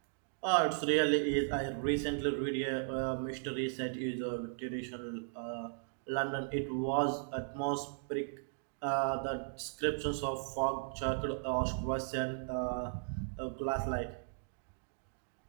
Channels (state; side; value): silent; left; digital silence